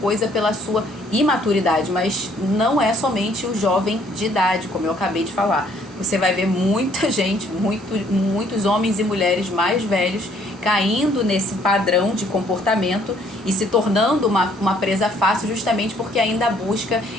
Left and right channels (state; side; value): normal; both; correlation 0.63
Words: pela sua imaturidade, mas não é somente o jovem de idade, como eu acabei de falar. Você vai ver muita gente, muitos homens e mulheres mais velhos caindo nesse padrão de comportamento e se tornando uma presa fácil, justamente porque ainda